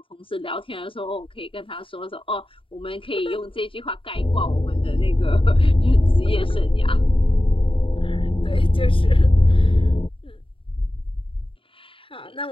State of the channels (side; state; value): right; late; 0.25 ms